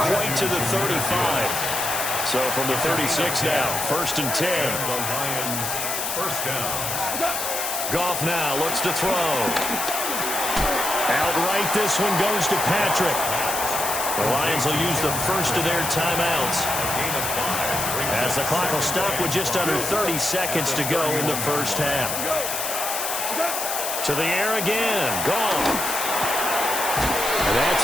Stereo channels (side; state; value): left; noise; hiss, 3 dB below the sound